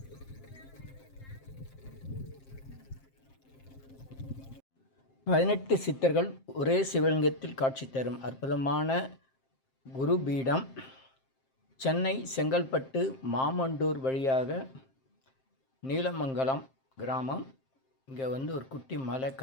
பதினெட்டு சித்தர்கள் ஒரே சிவலிங்கத்தில் காட்சி தரும் அற்புதமான குருபீடம் சென்னை செங்கல்பட்டு மாமண்டூர் வழியாக நீலமங்கலம் கிராமம். இங்கே ஒரு குட்டி மலை,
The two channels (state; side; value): late; right; 7.6 ms